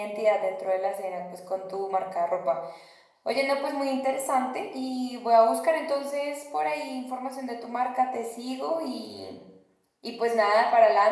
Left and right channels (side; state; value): both; identical; correlation 1.00